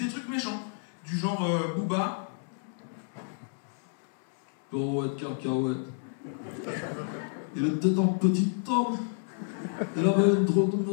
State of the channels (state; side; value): silent; right; digital silence